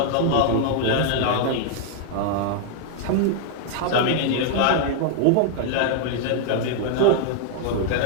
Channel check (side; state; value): both; different; correlation 0.00